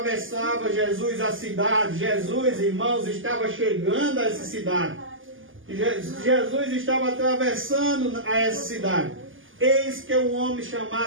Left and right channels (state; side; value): late; left; 0.58 ms